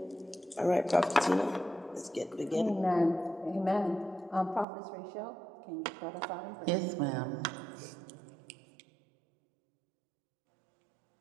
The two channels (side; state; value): left; drops out; at 4.7 s